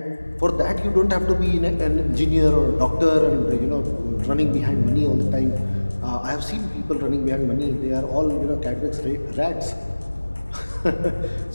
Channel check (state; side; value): inverted; both; correlation -1.00